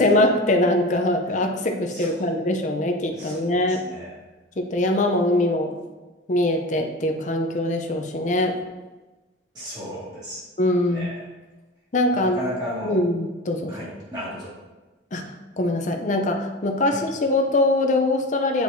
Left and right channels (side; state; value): both; normal; correlation 0.30